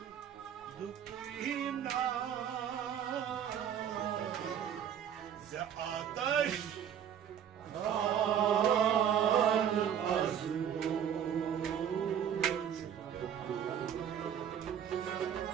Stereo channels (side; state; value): left; quieter; 9.0 dB